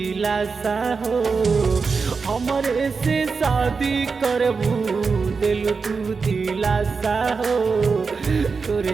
हो। हमरे से शादी करबू दिलु तू दिलासा हो।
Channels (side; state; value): left; quieter; 4.9 dB